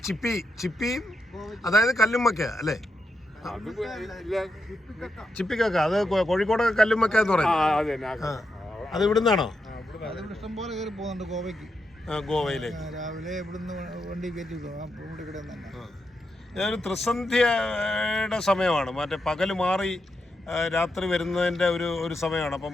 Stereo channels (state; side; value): normal; both; correlation 0.84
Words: ചിപ്പിയും അതായത് കല്ലുമ്മക്ക അല്ലേ? ചിപ്പിക്കക്ക അത് കോഴിക്കോടൊക്കെ കല്ലുമ്മക്ക എന്ന് പറയും. അത് ഇവിടുന്നാണോ? ഇഷ്ടം പോലെ കയറി പോകുന്നുണ്ട് ഗോവയ്ക്ക്. ഗോവയിലേക്ക് രാവിലെ ഇവിടുന്ന് വണ്ടി കയറ്റി ഒരു ത്രിസന്ധ്യയുടെ സമയമാണ്. മറ്റേ പകല് മാറി രാത്രി വരുന്നതിൻ്റെ ഒരു സമയമാണ്. അപ്പോൾ